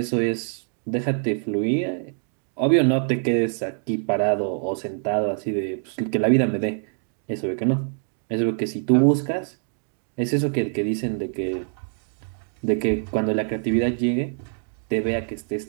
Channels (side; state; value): left; silent; digital silence